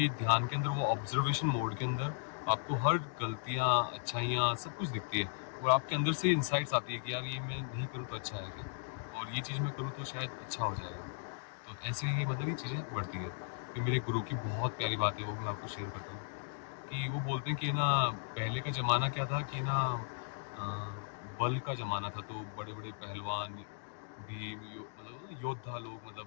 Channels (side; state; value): right; silent; digital silence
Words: ध्यान के अंदर, वो ऑब्जर्वेशन मोड के अंदर, आपको हर गलतियाँ, अच्छाइयाँ सब कुछ दिखती है, और आपके अंदर से इंसाइट्स आती है कि यार ये मैं नहीं करूँ तो अच्छा है क्या, और ये चीज़ मैं करूँ तो शायद अच्छा हो जाएगा। तो ऐसे ही मतलब ये चीज़ें बढ़ती है। कि मेरे गुरु की बहुत प्यारी बात है, वो भी मैं आपको शेयर करता हूँ। कि वो बोलते हैं कि ना, पहले का ज़माना क्या था कि ना, अ, बल का ज़माना था, तो बड़े बड़े पहलवान, भीम, मतलब योद्धा लोग,